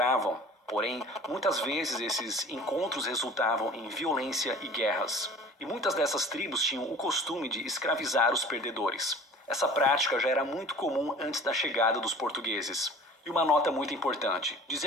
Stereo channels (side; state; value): both; normal; correlation 0.45